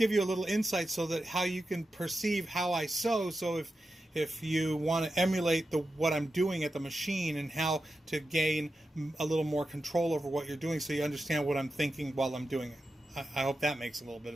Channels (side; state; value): both; normal; correlation 0.91